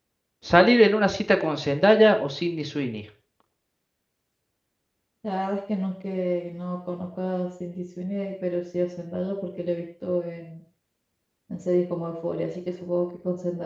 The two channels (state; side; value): identical; both; correlation 1.00